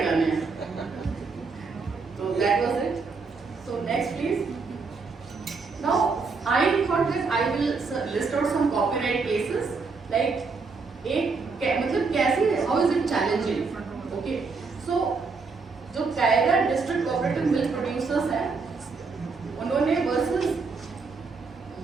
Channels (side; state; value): left; quieter; 4.5 dB